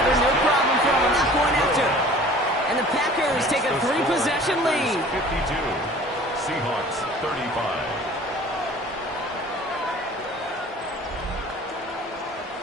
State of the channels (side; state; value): both; normal; correlation 0.47